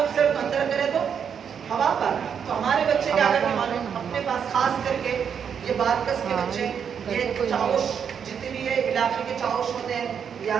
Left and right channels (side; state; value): left; quieter; 7.5 dB